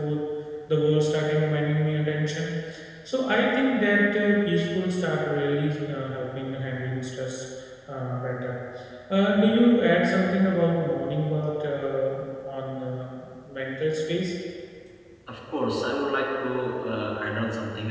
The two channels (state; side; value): identical; both; correlation 1.00